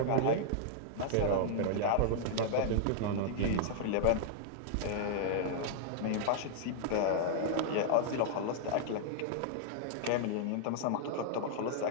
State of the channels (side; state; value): both; different; correlation -0.01